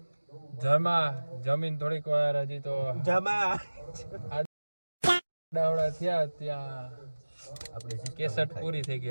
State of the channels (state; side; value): inverted; both; correlation -1.00